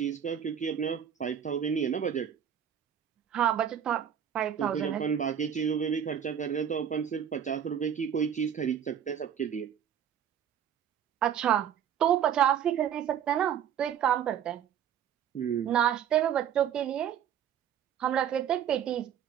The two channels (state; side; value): quieter; left; 9.0 dB